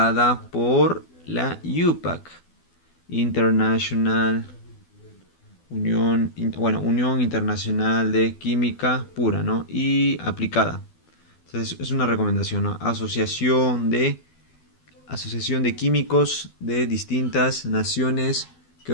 por la UPAC, International Unión Internacional de Química Pura, ¿no? Y aplicada. Entonces es una recomendación, ¿no? Asociación de químicos de distintas naciones que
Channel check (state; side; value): late; right; 12 ms